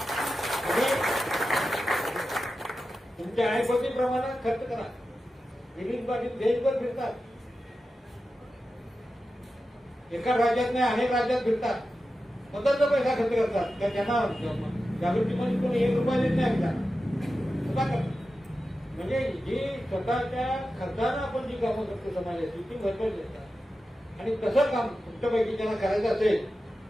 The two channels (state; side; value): normal; both; correlation 0.92